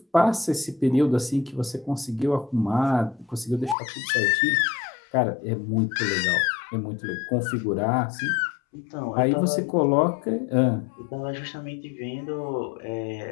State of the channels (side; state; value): right; drops out; at 3.8 s